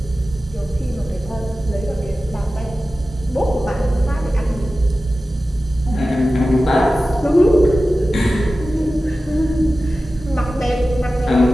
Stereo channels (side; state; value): both; normal; correlation 0.95